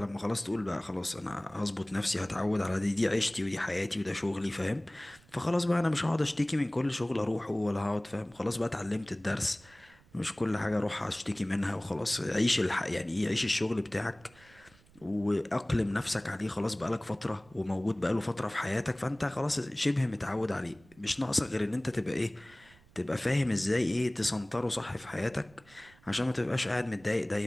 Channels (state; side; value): noise; right; rumble, 27 dB below the sound